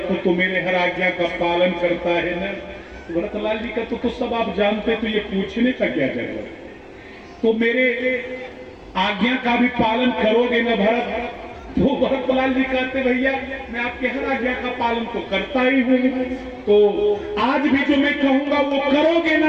तो मेरे हर आज्ञा का पालन करता है ना। तो भरतलाल जी कहते, तो सब आप जानते, तो ये पूछने का क्या जरूरत? तो मेरे आज्ञा का भी पालन करोगे ना भरत? तो भरतलाल जी कहते, भैया मैं आपके हर आज्ञा का पालन तो करता ही हूँ, तो आज भी जो मैं कहूंगा वो करोगे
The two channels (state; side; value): identical; both; correlation 1.00